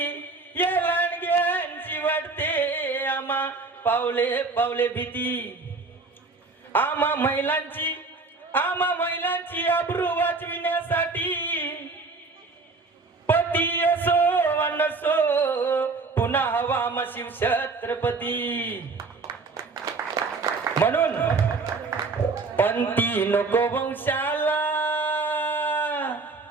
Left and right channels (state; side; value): quieter; left; 4.0 dB